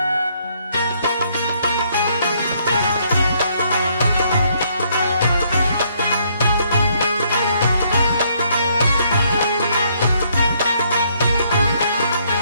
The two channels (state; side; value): inverted; both; correlation -0.69